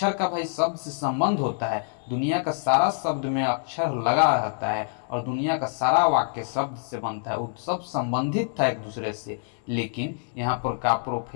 का भाई शब्द से संबंध होता है। दुनिया का सारा शब्द में अक्षर लगा रहता है और दुनिया का सारा वाक्य शब्द से बनता है, वो सब संबंधित था एक दूसरे से। लेकिन यहाँ पर का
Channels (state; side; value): silent; right; digital silence